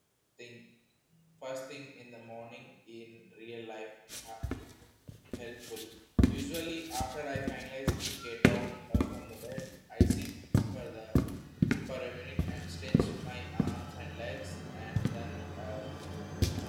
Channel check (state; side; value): identical; both; correlation 1.00